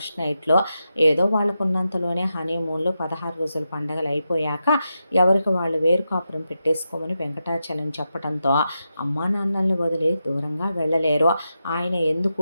నైట్లో ఏదో వాళ్ళకున్నంతలోనే హనీమూన్లో 16 రోజుల పండగలు అయిపోయాక ఎవరికి వాళ్ళు వేరు కాపురం పెట్టేసుకోమని వెంకటాచలం చెప్పడంతో అమ్మా నాన్నల్ని వదిలి దూరంగా వెళ్ళలేరు, ఆయన ఎందుకు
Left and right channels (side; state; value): both; inverted; correlation -0.88